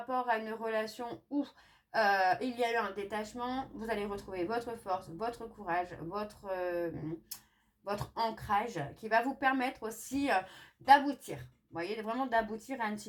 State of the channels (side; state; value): both; identical; correlation 1.00